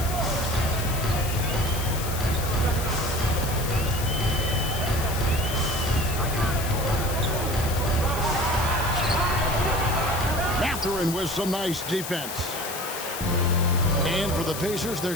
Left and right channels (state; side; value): noise; left; hiss, 8 dB below the sound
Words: Mathurin with some nice defense. And for the Pacers, they're